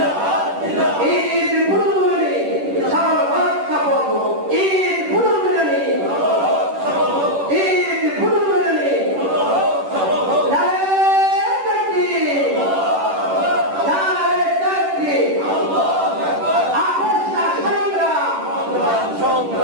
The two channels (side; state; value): left; late; 10 ms